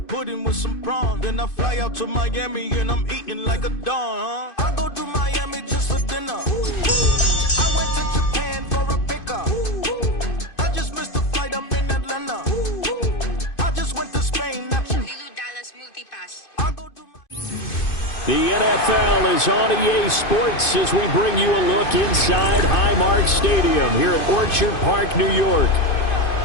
with some prawns. Then I fly out to Miami and I'm eating like a don, I go to Miami just for dinner. I went to Japan for a pickup. I just missed the flight, I'm in Atlanta. I just went to Spain, not you. The NFL is on EA Sports as we bring you a look inside Highmark Stadium here at Orchard Park, New York.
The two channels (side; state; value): right; late; 2.5 ms